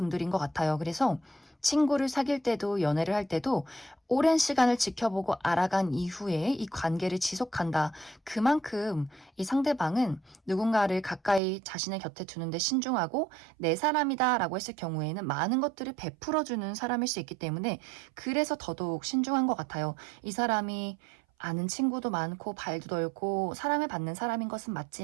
것 같아요. 그래서 친구를 사귈 때도 연애를 할 때도 오랜 시간을 지켜보고 알아간 이후에 이 관계를 지속한다. 그만큼 이 상대방은 누군가를 가까이 자신의 곁에 두는데 신중하고 내 사람이다 라고 했을 경우에는 많은 것들을 베풀어주는 사람일 수 있기 때문에 그래서 더더욱 신중한 것 같아요. 이 사람이 아는 친구도 많고 발도 넓고 사랑을 받는 사람인 것은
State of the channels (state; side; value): drops out; left; at 11.4 s